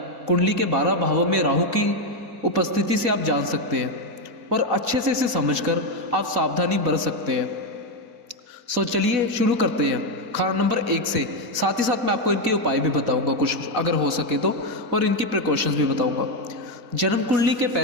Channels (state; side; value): late; left; 4.1 ms